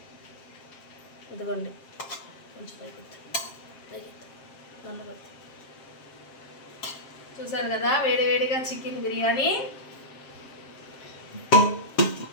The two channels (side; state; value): right; late; 7.5 ms